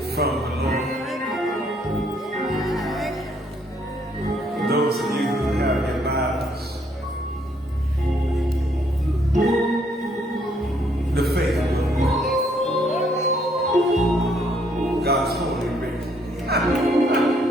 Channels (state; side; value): normal; both; correlation 0.68